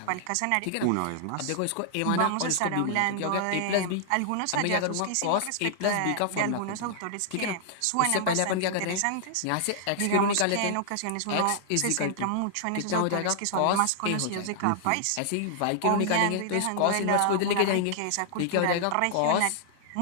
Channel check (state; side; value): different; both; correlation -0.01